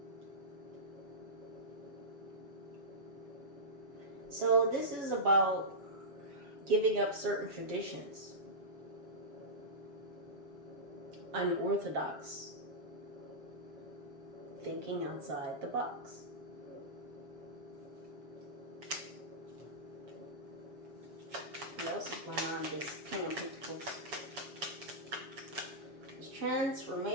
So this is about giving up certain traditions, unorthodox, thinking outside the box. What else is going on this King of Pentacles? This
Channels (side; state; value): left; late; 7.0 ms